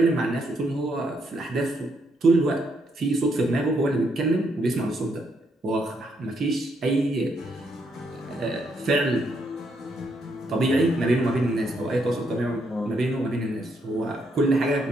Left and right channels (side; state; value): both; normal; correlation 0.75